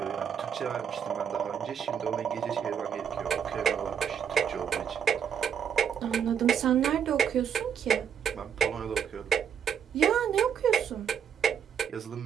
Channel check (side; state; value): left; quieter; 8.0 dB